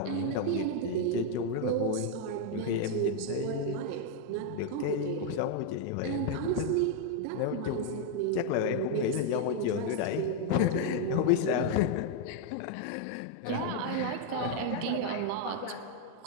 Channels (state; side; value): different; both; correlation 0.01